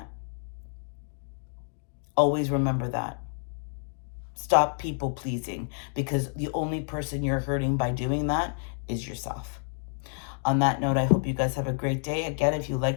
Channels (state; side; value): silent; right; 59 dB below the other